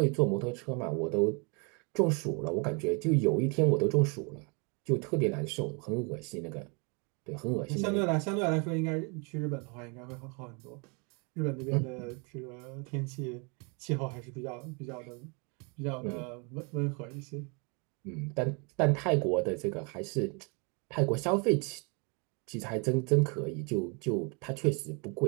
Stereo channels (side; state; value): left; quieter; 33.3 dB